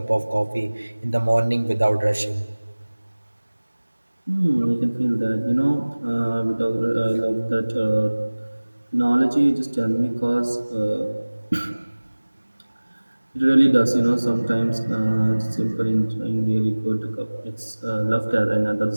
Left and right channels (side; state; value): both; inverted; correlation -1.00